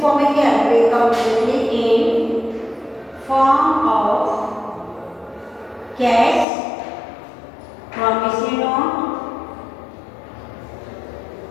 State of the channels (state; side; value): drops out; right; at 6.5 s